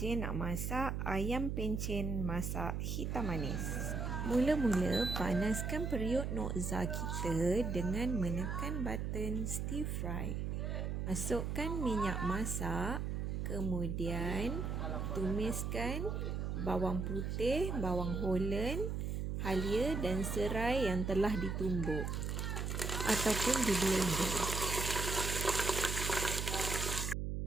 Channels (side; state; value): right; noise; hum, 2 dB below the sound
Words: nak masak ayam pencen masak hitam manis. Mula-mula panaskan periuk Noxxa kita dengan menekan button stir fry. Masukkan minyak masak, kemudian tumiskan bawang putih, bawang Holland, halia dan serai yang telah ditumbuk ataupun di blender.